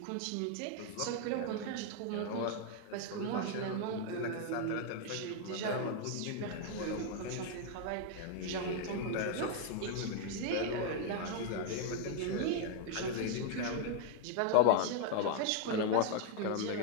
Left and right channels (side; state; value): both; different; correlation 0.00